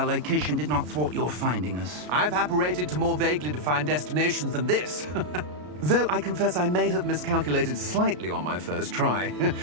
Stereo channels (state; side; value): late; left; 33 ms